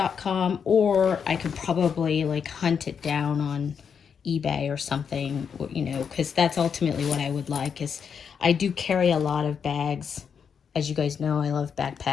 or I could probably like hunt it down on eBay or something, you know, because that's ultimately what I would like. Is I do carry a lot of bags. As you guys know, I love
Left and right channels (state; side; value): quieter; right; 6.8 dB